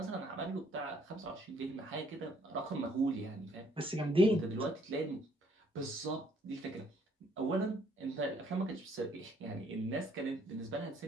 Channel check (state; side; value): normal; both; correlation 0.65